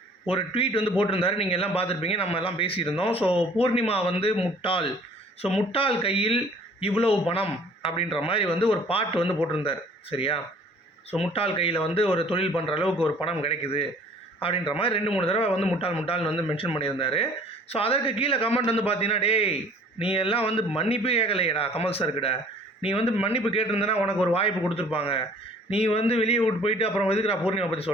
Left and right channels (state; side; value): normal; both; correlation 0.53